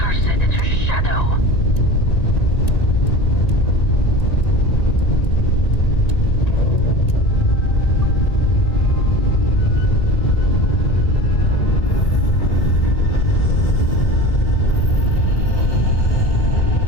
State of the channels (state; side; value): late; right; 1.9 ms